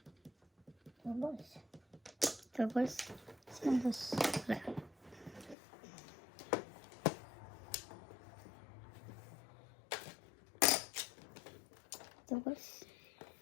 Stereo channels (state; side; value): drops out; right; at 5.6 s